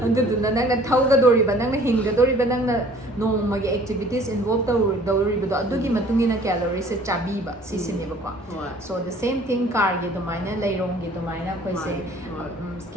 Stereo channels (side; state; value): both; normal; correlation 0.53